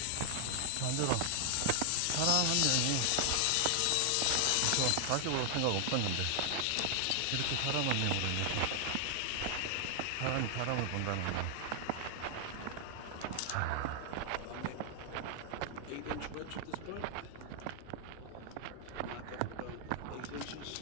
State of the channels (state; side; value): different; both; correlation 0.00